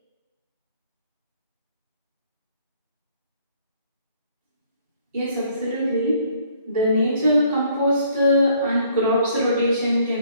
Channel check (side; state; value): both; inverted; correlation -0.63